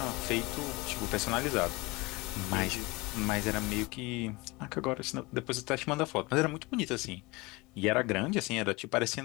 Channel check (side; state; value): right; quieter; 23.6 dB